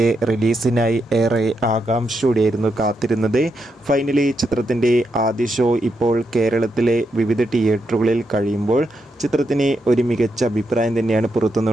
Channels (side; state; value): both; normal; correlation 0.83